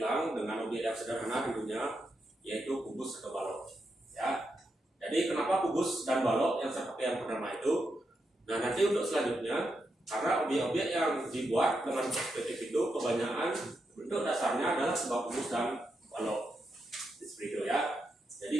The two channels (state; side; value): normal; both; correlation 0.84